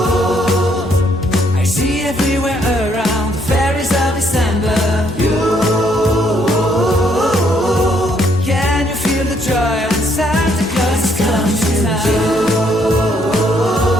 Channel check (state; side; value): normal; both; correlation 0.69